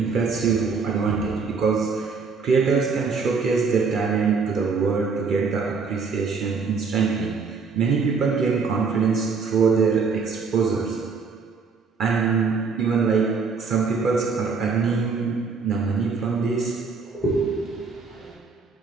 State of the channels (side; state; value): left; quieter; 5.0 dB